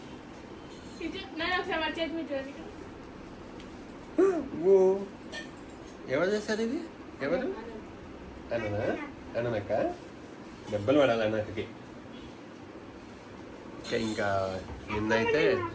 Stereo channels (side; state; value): both; identical; correlation 1.00